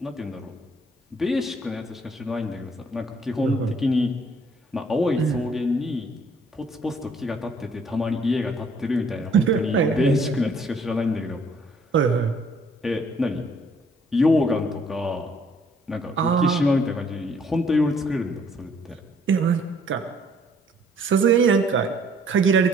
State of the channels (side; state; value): both; normal; correlation 0.62